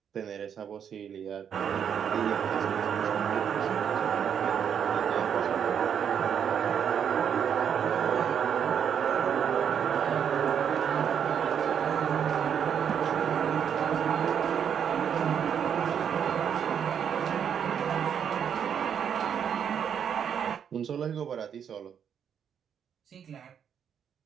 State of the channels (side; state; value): left; quieter; 8.1 dB